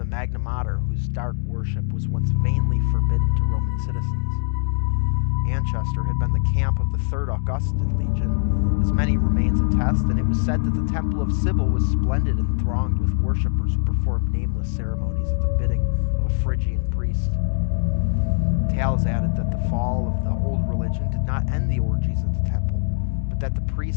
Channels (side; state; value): right; silent; digital silence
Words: Magna Mater whose dark worship was once vainly forbidden to Roman citizens. Anchester had been the camp of the 3rd Augustan Legion, as many remains attest, and it was said that the Temple of Sibyl was splendid and thronged with worshippers who performed nameless ceremonies at the bidding of a Phrygian priest. Tales added that the fall of the old religion did not end the orgies at the temple, but that the